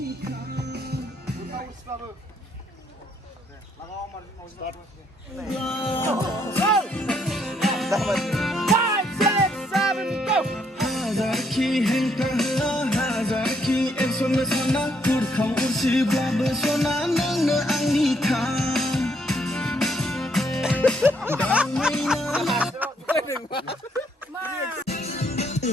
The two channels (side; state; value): both; normal; correlation 0.71